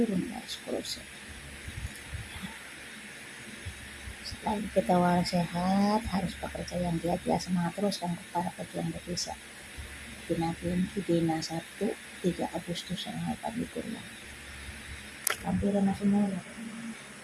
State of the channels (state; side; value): identical; both; correlation 1.00